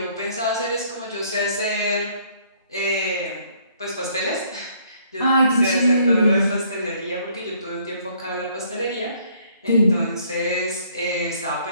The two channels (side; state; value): both; inverted; correlation -0.63